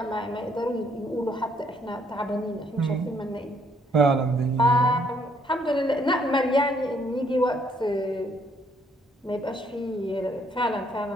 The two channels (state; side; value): normal; both; correlation 0.68